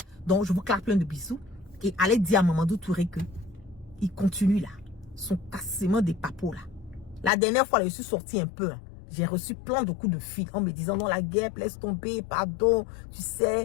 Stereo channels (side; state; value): right; drops out; at 7.3 s